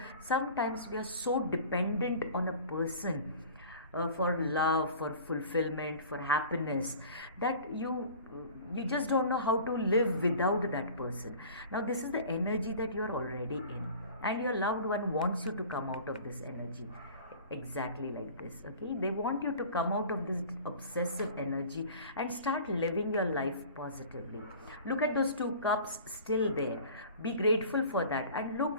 sometimes we are so dependent on a person, for love, for fulfillment, for happiness, that you just don't know how to live without that person. Now this is the energy that you are already in, and your loved one wants you to come out of this energy exactly like this. Okay, they want you to come out of this obsessive energy and start living your life positively. Look at those two cups still there, be grateful for that, and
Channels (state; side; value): inverted; both; correlation -0.42